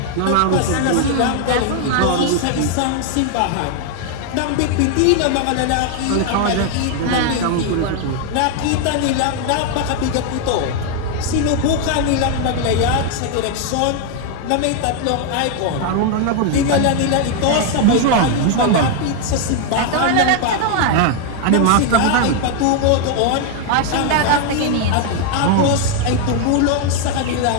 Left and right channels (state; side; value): different; both; correlation 0.00